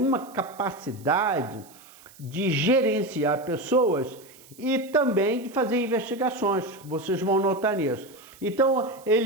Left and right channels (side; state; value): right; noise; hiss, 23 dB below the sound